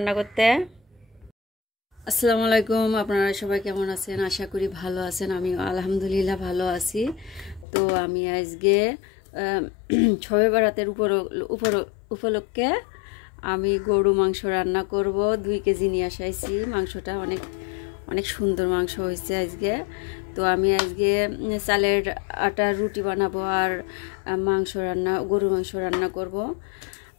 করতে। আসসালামু আলাইকুম, আপনারা সবাই কেমন আছেন? আশা করি ভালো আছেন। আমি আলহামদুলিল্লাহ ভালো আছি। তো আমি আজকে শবে বরাতের উপলক্ষে আমি গরু মাংস রান্না করব। 2 কেজি নিয়ে আসাইছি। মাংসটা অনেক সুন্দর মাংস হয়েছে আজকে। তো আমি আজকে চালের আটার রুটি বানাবো আর গরু মাংস রান্না করব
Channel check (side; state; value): right; drops out; at 7.7 s